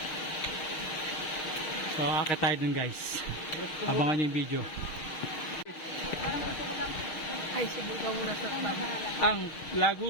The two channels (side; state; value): right; late; 6.5 ms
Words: so akit tayo dun guys, abangan nyo yung video. Ay, subukan muna sa tabi. Ang